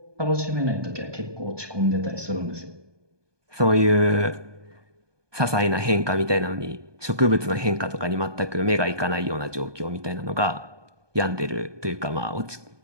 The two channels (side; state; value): left; late; 1.2 ms